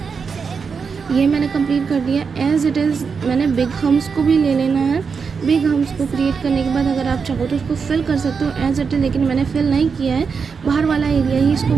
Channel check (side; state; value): left; quieter; 5.6 dB